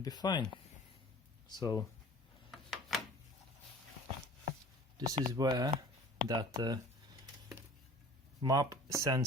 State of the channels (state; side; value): normal; both; correlation 0.44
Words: be fine. So this is where that MAP